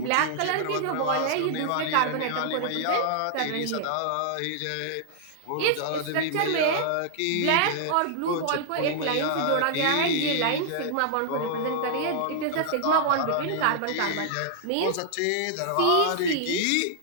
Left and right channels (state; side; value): different; both; correlation -0.01